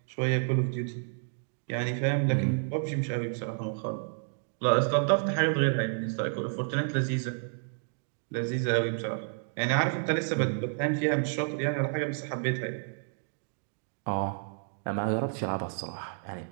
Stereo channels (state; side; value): silent; left; digital silence